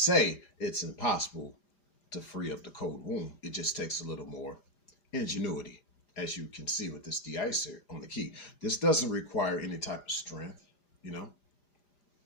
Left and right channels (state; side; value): late; right; 5.0 ms